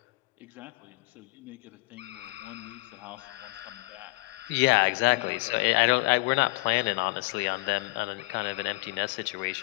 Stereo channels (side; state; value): right; quieter; 24.1 dB